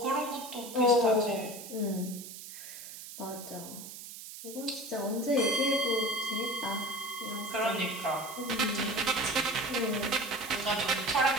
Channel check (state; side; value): noise; right; hiss, 12 dB below the sound